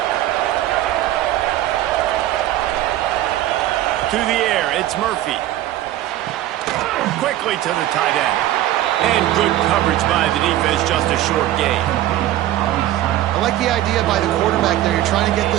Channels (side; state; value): left; quieter; 13.9 dB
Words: To the air, it's Murphy. Quickly to the tight end. And good coverage by the defense, just a short gain. I like the idea by the quarterback there. You're trying to get